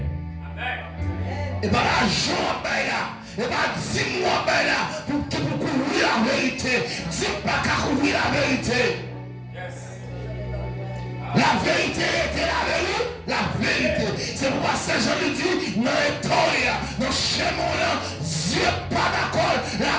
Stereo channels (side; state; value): both; identical; correlation 1.00